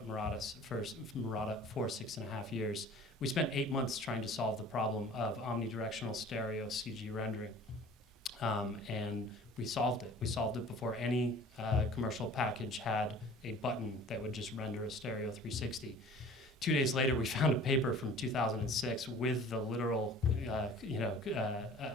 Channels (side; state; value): both; normal; correlation 0.46